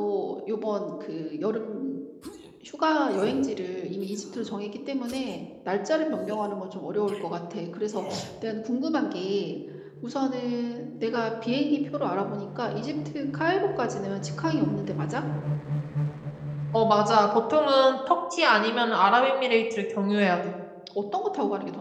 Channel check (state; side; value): identical; both; correlation 1.00